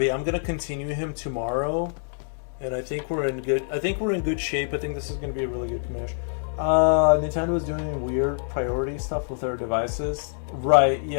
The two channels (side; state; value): right; silent; digital silence